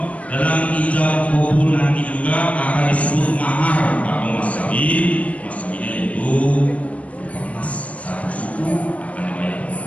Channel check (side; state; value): right; late; 0.066 ms